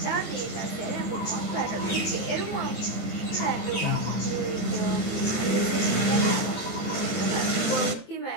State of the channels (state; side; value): late; right; 21 ms